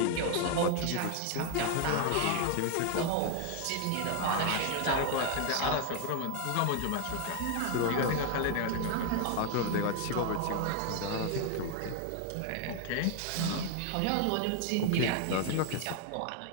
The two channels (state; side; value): different; both; correlation 0.00